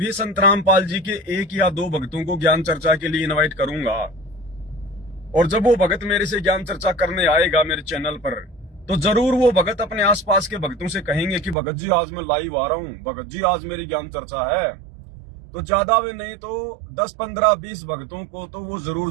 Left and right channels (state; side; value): drops out; left; at 11.6 s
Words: संत रामपाल जी के 1 या 2 भक्तों को ज्ञान चर्चा के लिए इनवाइट करूंगा, और जब वो भगत मेरे से ज्ञान चर्चा करने आएगा मेरे चैनल पर, तो जरूर वो भगत अपने आसपास के भक्तों से कहेंगे कि भगत जी आज मैं लाइव आ रहा हूं, भगत जी आज मेरी ज्ञान चर्चा है। तो ज्यादा में नहीं तो 10, 15, 20 भक्तों को तो वो जरूर